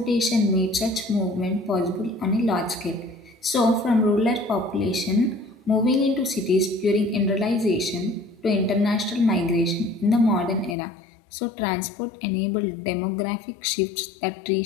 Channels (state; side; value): drops out; right; at 10.8 s